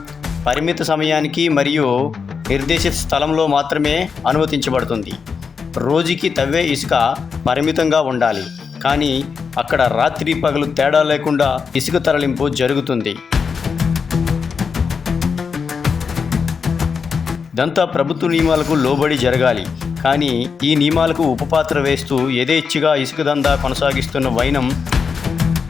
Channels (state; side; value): quieter; right; 5.8 dB